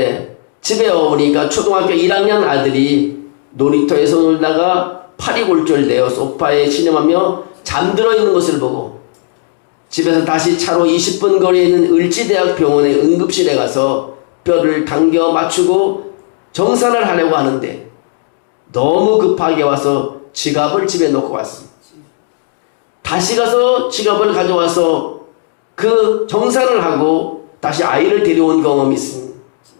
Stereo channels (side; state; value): right; silent; digital silence